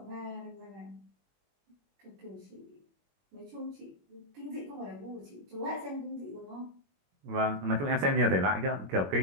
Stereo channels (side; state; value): left; late; 21 ms